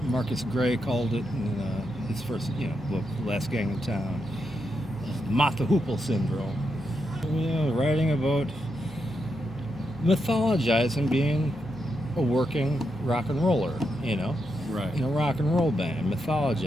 Marcus Gray called it in his first, book, Last Gang in Town, Martha Hoople syndrome. Writing about mythologizing being a working rock and roller, Right. in a rock and roll band,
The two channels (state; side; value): normal; both; correlation 0.84